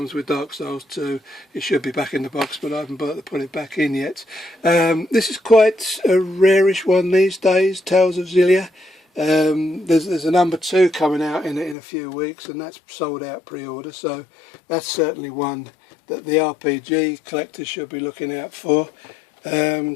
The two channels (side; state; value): right; drops out; at 11.8 s